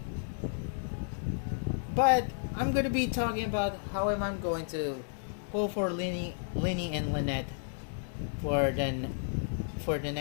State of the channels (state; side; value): silent; right; digital silence